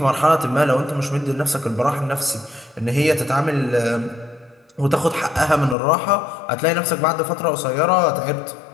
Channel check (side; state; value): right; drops out; at 5.8 s